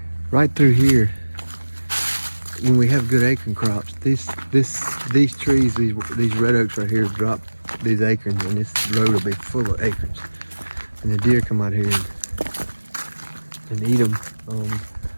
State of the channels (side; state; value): both; inverted; correlation -1.00